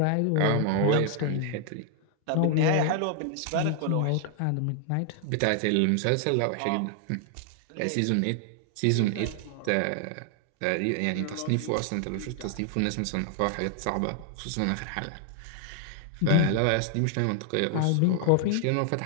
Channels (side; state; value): both; different; correlation 0.00